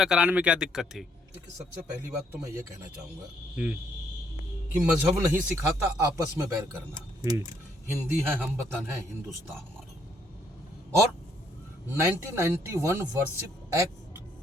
कराने में क्या दिक्कत थी? देखिए, सबसे पहली बात तो मैं ये कहना चाहूँगा हम्म। कि मजहब नहीं सिखाता आपस में बैर करना। हम्म। हिंदी है, हम वतन है, हिंदुस्तान हमारा। और 1991 वर्शिप एक्ट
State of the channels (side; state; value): both; normal; correlation 0.70